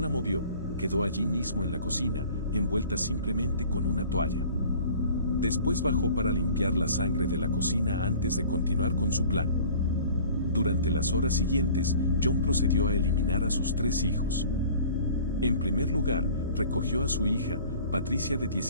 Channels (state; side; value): inverted; both; correlation -0.47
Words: movió. Quedó allí mismo en la cocina, envuelta simplemente con una toalla. Después bajó para limpiar la sangre de la cocina antes de continuar con su plan. Durante las horas siguientes, John procedió a eliminar a sus 3 hijos. En primer lugar, recogió a su hija, Patricia de